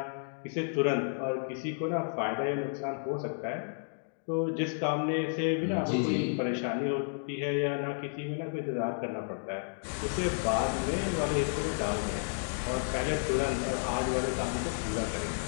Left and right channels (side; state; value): right; silent; digital silence